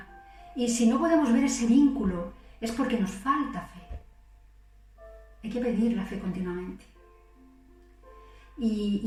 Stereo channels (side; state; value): both; identical; correlation 1.00